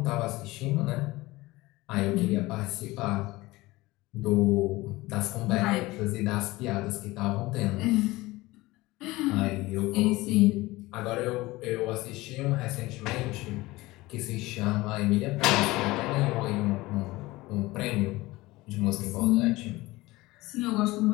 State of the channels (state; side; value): quieter; right; 20.0 dB